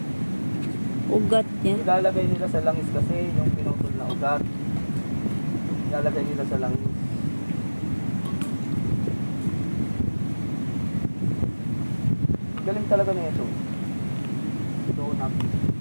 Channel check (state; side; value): inverted; both; correlation -1.00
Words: Ugat niya. Ilalagay nila sa langis kasi yung pinutol na ugat. Ilalagay nila sa langis. Galing talaga na ito. Donut.